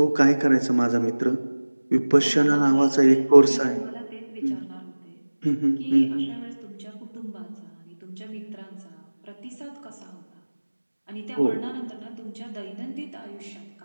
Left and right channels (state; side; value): inverted; both; correlation -1.00